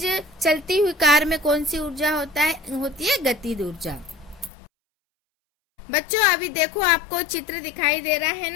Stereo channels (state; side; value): drops out; right; at 4.5 s